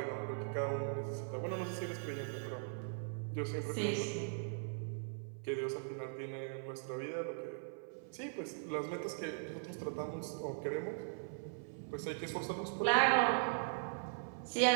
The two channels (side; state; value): left; silent; 51 dB below the other